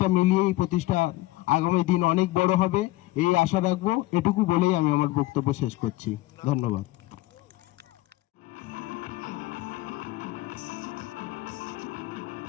মিলিয়ে এই প্রতিষ্ঠান আগামী দিন অনেক বড় হবে, এই আশা রাখবো। এটুকু বলেই আমি আমার বক্তব্য শেষ করছি। ধন্যবাদ।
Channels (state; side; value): quieter; right; 18.4 dB